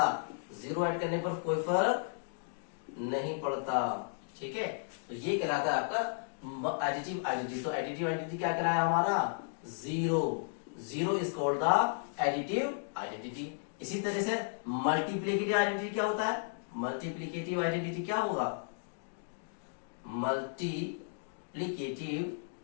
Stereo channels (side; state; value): right; silent; digital silence